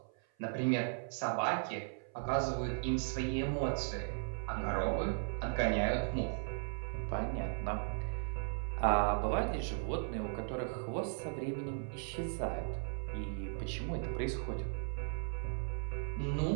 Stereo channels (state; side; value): silent; left; 53 dB below the other